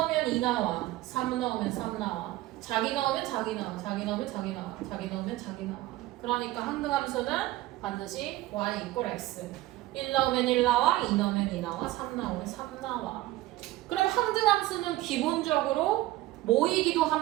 2 나와. 3 넣으면 3 나와. 자기 넣으면 자기 나와. 자기 넣으면 자기 나와. 자기 넣으면 자기 나와. 그러니까 항등함수는 반드시 y 이퀄 x. 1 넣으면 1 나와. 2 넣으면 2 나와. 3 넣으면 3 나와. 그럼 항등함수는 기본적으로 뭐이기도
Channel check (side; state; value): left; quieter; 17.1 dB